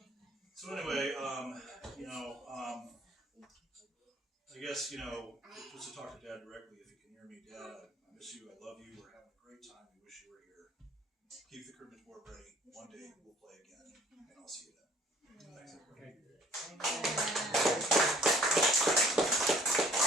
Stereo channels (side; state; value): both; normal; correlation 0.55